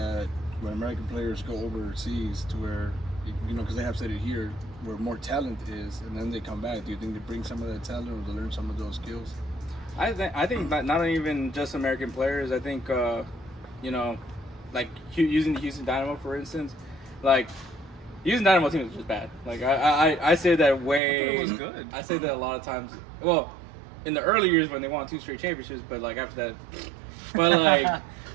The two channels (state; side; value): drops out; left; at 21.0 s